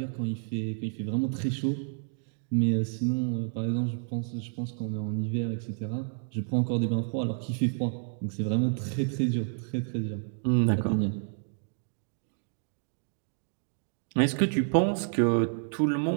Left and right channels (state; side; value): silent; left; digital silence